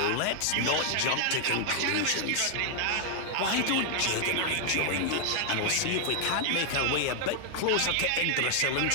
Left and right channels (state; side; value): different; both; correlation 0.00